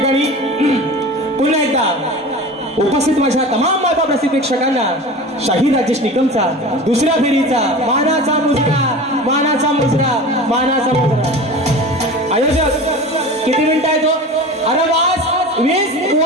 पुन्हा एकदा उपस्थित माझ्या तमाम माता प्रसिद्ध प्रेक्षकांना शाही राजेश निकमचा दुसऱ्या फेरीचा मानाचा मुजरा आयोजक किती मिनिटं आहे तो? अरे वास 20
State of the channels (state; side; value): normal; both; correlation 0.34